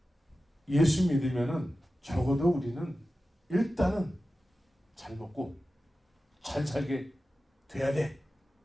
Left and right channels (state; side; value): normal; both; correlation 0.94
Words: 예수 믿으면은 적어도 우리는 일단은 잘 먹고 잘 살게 돼야 돼.